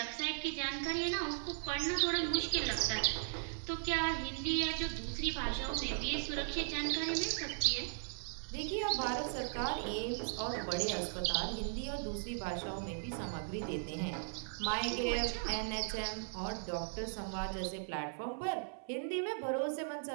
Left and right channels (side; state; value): left; silent; 53 dB below the other